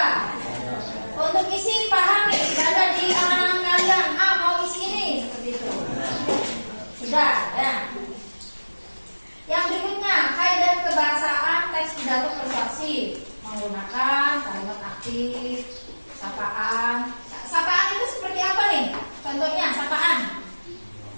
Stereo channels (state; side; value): inverted; both; correlation -1.00